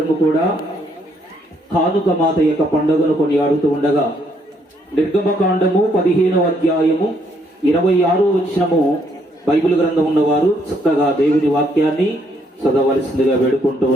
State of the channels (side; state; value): both; normal; correlation 0.71